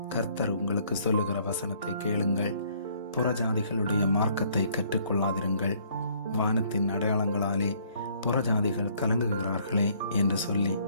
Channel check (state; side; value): inverted; both; correlation -0.62